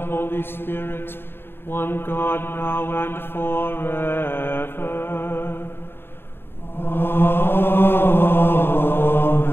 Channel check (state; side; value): late; right; 0.11 ms